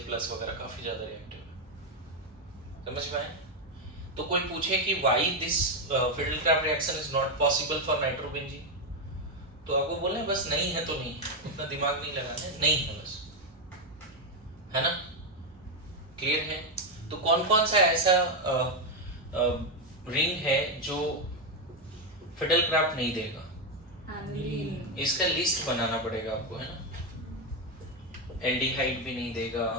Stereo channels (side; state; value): both; normal; correlation 0.06